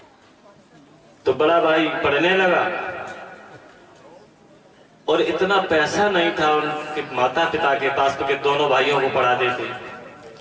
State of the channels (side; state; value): both; identical; correlation 1.00